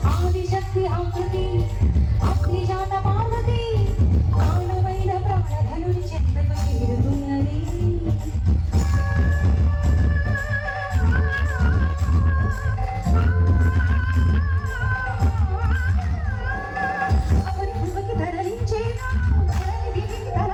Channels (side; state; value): both; identical; correlation 1.00